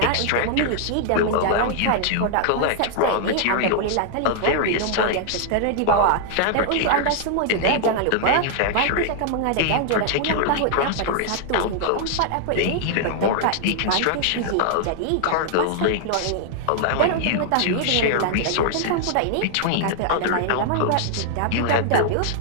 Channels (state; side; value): different; both; correlation -0.01